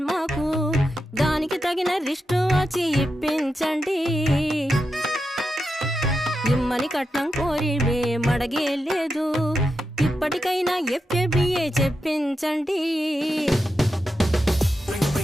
మాకు, దానికి తగిన రిస్టు వాచి ఇప్పించండి. ఇమ్మని కట్నం కోరివే మడగే లేదు, ఇప్పటికైనా ఎఫ్ఏబిఏ చెప్పించండి.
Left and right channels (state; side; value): normal; both; correlation 0.88